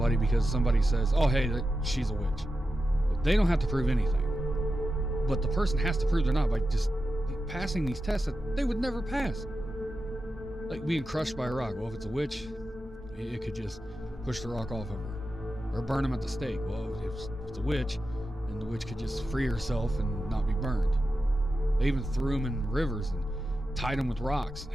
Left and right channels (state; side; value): normal; both; correlation 0.91